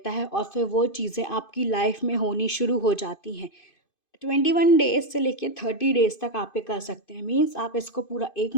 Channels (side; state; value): right; late; 2.5 ms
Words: है और फिर वो चीज़ें आपकी लाइफ में होनी शुरू हो जाती हैं। 21 डेज़ से लेके 30 डेज़ तक आप ये कर सकते हैं। मीन्स आप इसको पूरा 1